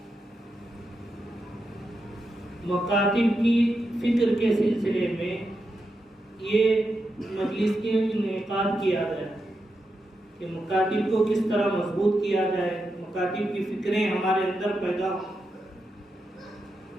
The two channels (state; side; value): normal; both; correlation 0.86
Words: مکاتب کی فکر کے سلسلے میں یہ مجلس کے انعقاد کیا گیا کہ مکاتب کو کس طرح مضبوط کیا جائے، مکاتب کی فکریں ہمارے اندر پیدا ہوں.